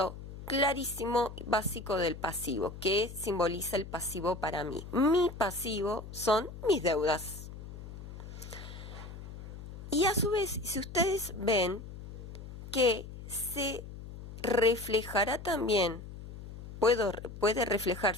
clarísimo, básico del pasivo. ¿Qué simboliza el pasivo para mí? Mi pasivo son mis deudas. Y a su vez, si ustedes ven que se reflejará también, puede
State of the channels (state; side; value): noise; left; hum, 12 dB below the sound